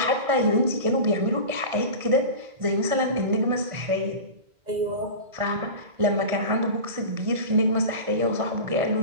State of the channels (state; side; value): late; left; 1.5 ms